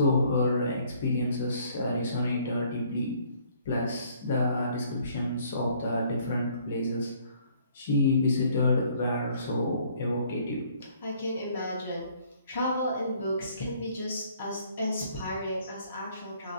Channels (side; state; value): both; inverted; correlation -0.61